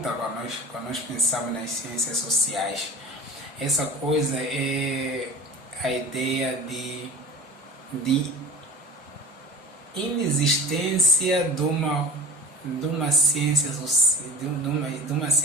quando nós pensamos nas ciências sociais. Essa coisa é a ideia de inexistência de uma ciência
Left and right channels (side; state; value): both; normal; correlation 0.38